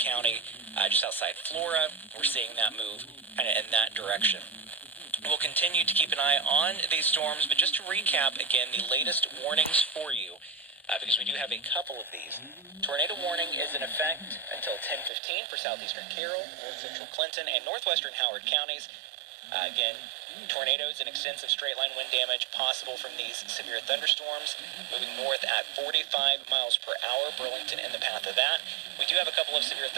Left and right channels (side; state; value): left; drops out; at 15.1 s